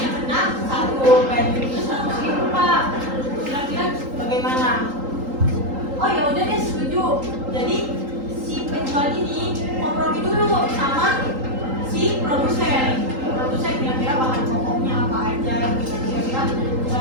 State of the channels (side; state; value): left; late; 3.8 ms